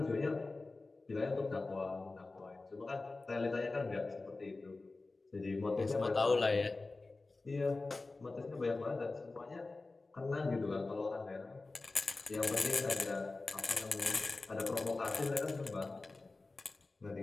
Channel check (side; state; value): right; quieter; 3.5 dB